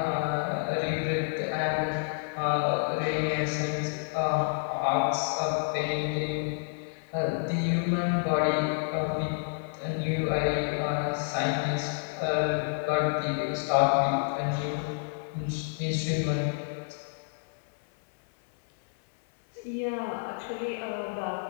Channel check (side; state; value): right; silent; 58 dB below the other